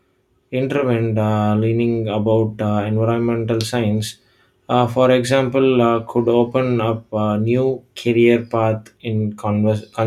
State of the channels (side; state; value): both; identical; correlation 1.00